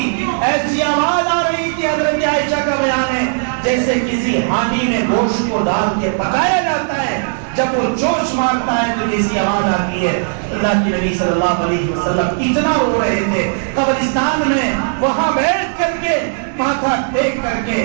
ایسی آواز آ رہی تھی حضرت عائشہ کا بیان ہے جیسے کسی ہانڈی میں گوشت کو ڈال کے پکایا جاتا ہے جب وہ جوش مارتا ہے تو جیسی آواز آتی ہے. اللہ کے نبی صلی اللہ علیہ وسلم اتنا رو رہے تھے قبرستان میں وہاں بیٹھ کر کے ماتھا ٹیک کر کے.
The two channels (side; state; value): left; silent; digital silence